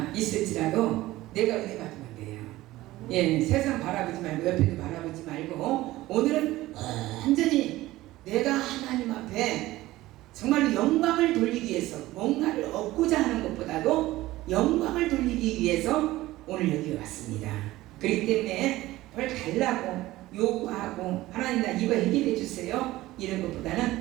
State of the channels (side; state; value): left; quieter; 17.1 dB